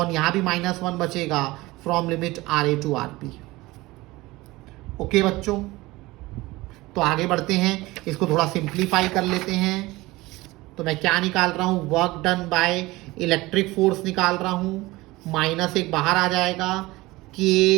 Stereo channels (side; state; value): left; quieter; 20.2 dB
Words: यहाँ भी -1 बचेगा, from limit RA to RB। Okay बच्चों, तो आगे बढ़ते हैं, इसको थोड़ा सिंप्लीफाई कर लेते हैं। तो मैं क्या निकाल रहा हूँ, work done by electric force निकाल रहा हूँ, -1 बाहर आ जाएगा, k